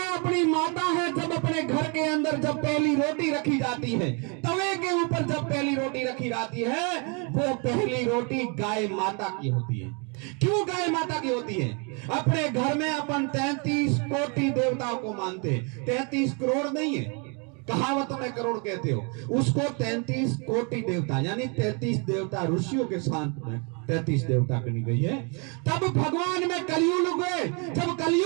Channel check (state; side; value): quieter; left; 34.7 dB